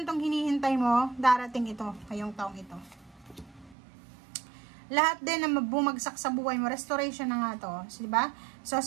tong hinihintay mo, darating ito, ngayong taong ito. Lahat din na bumagsak sa buhay mo, restoration na nga to. So, diba? So,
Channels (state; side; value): drops out; left; at 3.8 s